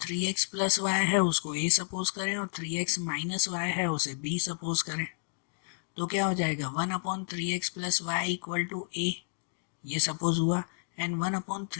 3x प्लस वाई है उसको a सपोज करें और 3x माइनस वाई है उसे b सपोज करें। तो क्या हो जाएगा 1/3x plus Y equal to a, ये सपोज हुआ, and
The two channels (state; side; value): silent; right; 57 dB below the other